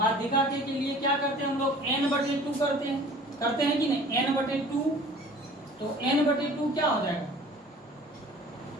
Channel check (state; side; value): normal; both; correlation 0.47